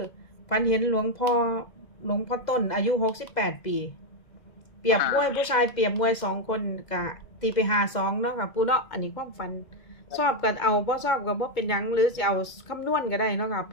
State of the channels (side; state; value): right; late; 2.0 ms